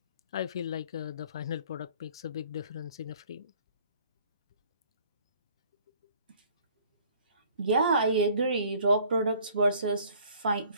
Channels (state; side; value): inverted; both; correlation -0.55